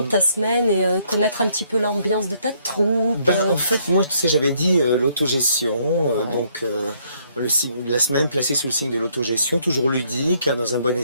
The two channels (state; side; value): inverted; both; correlation -0.69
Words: ta semaine et connaître un petit peu l'ambiance de ta troupe. En fait, moi, tu sais, j'avais dit l'autogestion, donc la semaine placée sous le signe de l'autogestion, toujours ludique, hein, dans un bon